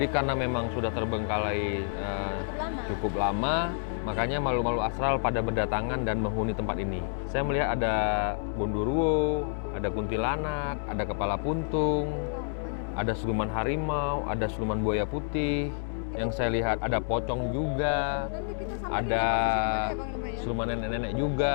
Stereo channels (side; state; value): right; silent; 59 dB below the other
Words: karena memang sudah terbengkalai cukup lama, makanya makhluk-makhluk astral pada berdatangan dan menghuni tempat ini. Saya melihat ada Gondoruo, ada kuntilanak, ada kepala puntung, ada siluman harimau, ada siluman buaya putih. Yang saya lihat ada pocong juga, Nanti kita samperin ada ya posisi di mana ya, Panglima ya? siluman nenek-nenek juga.